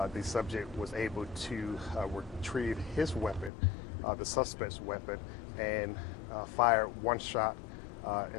was able to retrieve his weapon, the suspect's weapon, and fired one shot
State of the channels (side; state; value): right; drops out; at 3.5 s